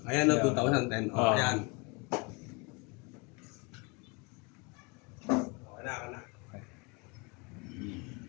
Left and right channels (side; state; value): right; quieter; 29.4 dB